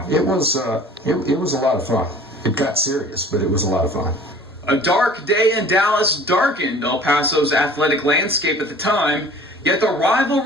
It was a lot of fun. It got serious, but it was a lot of fun. A dark day in Dallas darkened El Paso's athletic landscape at the time, yet the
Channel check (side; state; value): both; normal; correlation 0.47